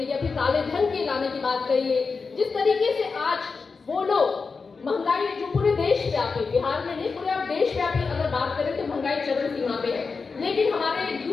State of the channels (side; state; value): right; quieter; 4.7 dB